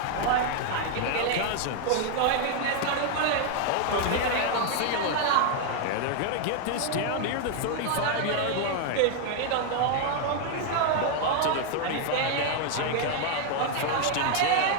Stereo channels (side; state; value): both; different; correlation 0.00